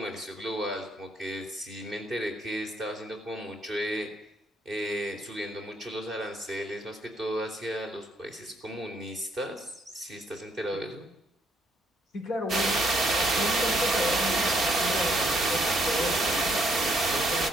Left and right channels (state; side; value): normal; both; correlation 0.70